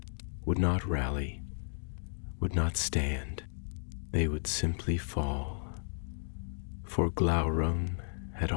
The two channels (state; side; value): silent; right; digital silence